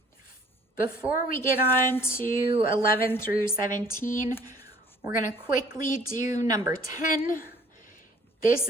Before we get on to 11 through 17, we're going to quickly do number 10. This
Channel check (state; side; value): normal; both; correlation 0.56